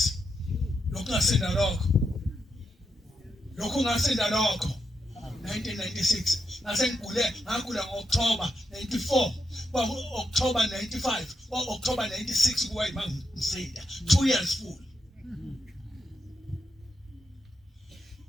lokhu ngasinda lokho 1996 ngagula ngo-October 94 October 95 October 96 kuwa ngisinda 2 years full.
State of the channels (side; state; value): both; normal; correlation 0.84